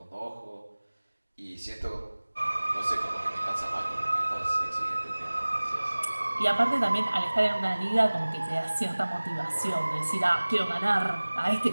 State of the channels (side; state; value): both; inverted; correlation -1.00